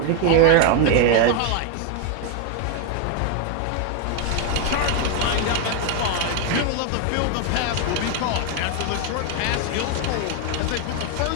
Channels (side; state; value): both; different; correlation 0.01